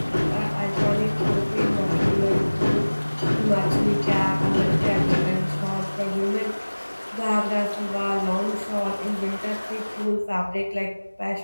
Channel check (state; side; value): inverted; both; correlation -1.00